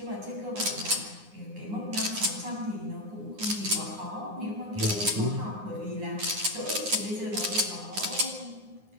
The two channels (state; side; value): late; left; 9.7 ms